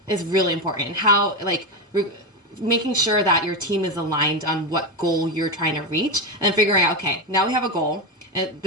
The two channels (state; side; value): normal; both; correlation 0.13